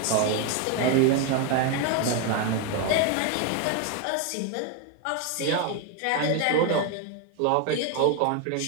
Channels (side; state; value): both; different; correlation 0.01